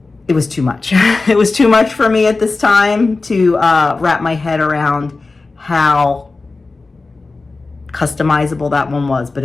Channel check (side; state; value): right; quieter; 3.7 dB